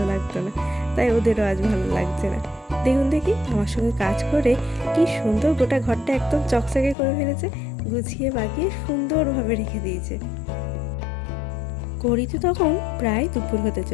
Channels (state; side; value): drops out; right; at 7.0 s